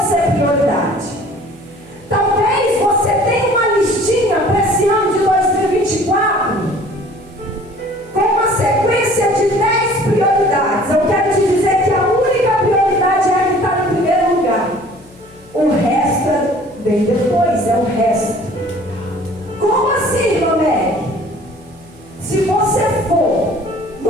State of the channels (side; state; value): left; noise; hum, 26 dB below the sound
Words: ser prioridade. Talvez você tenha uma listinha para esse ano de 2024 com uma sequência de 10 prioridades. Eu quero te dizer que a única prioridade é a que está em primeiro lugar. O resto vem depois, é o resto. Como assim, irmã Meg? Se você for